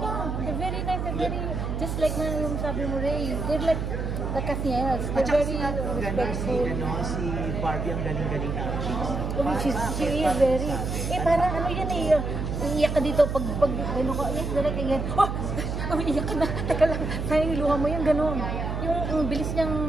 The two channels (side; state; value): right; noise; hum, 3 dB below the sound